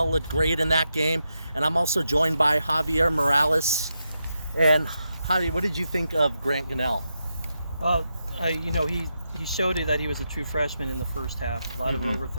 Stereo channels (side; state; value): both; inverted; correlation -0.86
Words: looked great in that game. And I'm also joined by Javier Morales. And Javi, what did you think of Grant Canal? Well, he showed it that he was a true freshman in the first half. A lot of